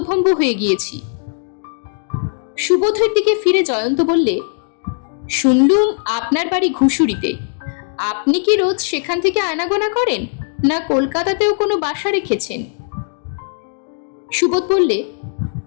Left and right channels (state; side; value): silent; right; digital silence